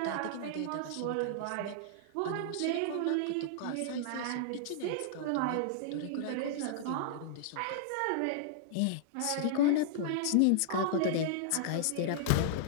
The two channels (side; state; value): both; different; correlation -0.01